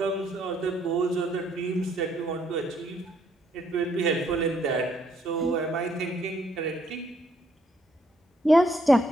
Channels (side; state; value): both; normal; correlation 0.70